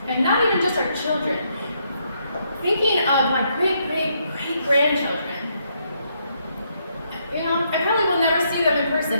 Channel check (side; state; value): both; inverted; correlation -0.75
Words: and not even just our children. Thinking of my great-grandchildren, you know, I probably will never see them in